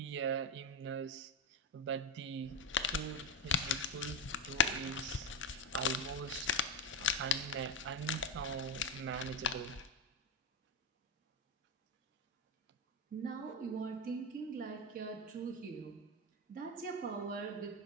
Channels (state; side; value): normal; both; correlation 0.09